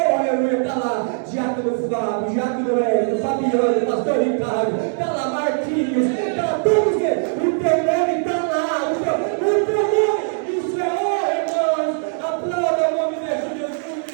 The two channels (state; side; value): silent; left; 62 dB below the other